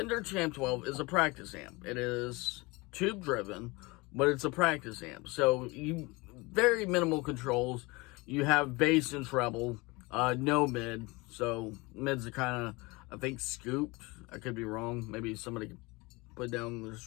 Champ 12 is a practice amp. It is tube driven, but it's a practice amp. So you very minimal controls. You have bass and treble, no mid. So mids are kind of, I think, scooped. I could be wrong. Maybe somebody could put down in the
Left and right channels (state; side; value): quieter; right; 24.6 dB